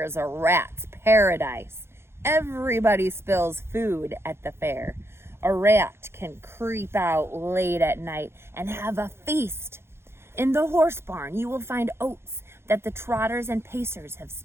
is a rat's paradise. Everybody spills food at the fair. A rat can creep out late at night and have a feast. In the horse barn, you will find oats that the trotters and pacers have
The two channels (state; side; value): late; left; 0.12 ms